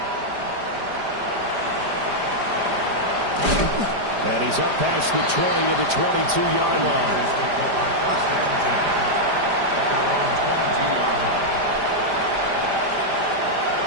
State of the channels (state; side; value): late; left; 5.0 ms